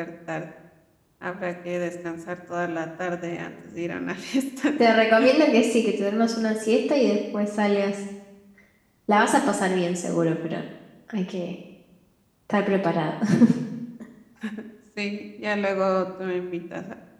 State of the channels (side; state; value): both; identical; correlation 1.00